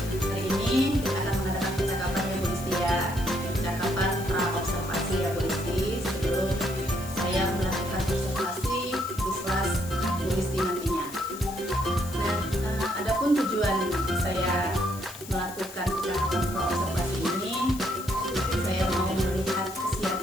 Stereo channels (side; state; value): left; noise; hiss, 15 dB below the sound